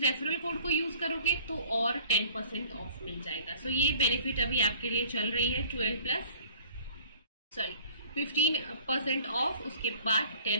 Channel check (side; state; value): both; inverted; correlation -0.51